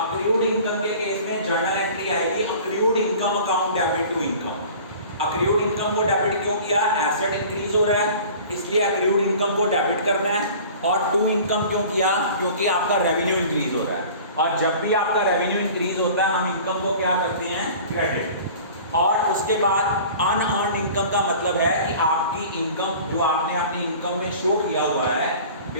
इनकम के केस में जर्नल एंट्री आएगी accrued income account debit to income. Accrued income को डेबिट क्यों किया? एसेट इंक्रीज हो रहा है इसलिए अक्रूड इनकम को डेबिट करना है। और टू इनकम क्यों किया? क्योंकि आपका रेवेन्यू इंक्रीज हो रहा है, और जब भी आपका रेवेन्यू इंक्रीज होता है हम इनकम को क्या करते हैं? क्रेडिट। और उसके बाद अनअर्न्ड इनकम का मतलब है कि आपकी इनकम जो आपने अपनी इनकम में शो किया हुआ है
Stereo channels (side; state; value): both; inverted; correlation -0.43